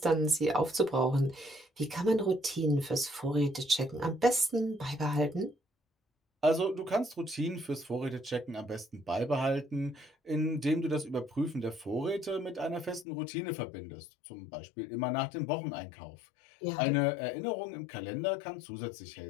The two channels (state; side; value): drops out; right; at 13.1 s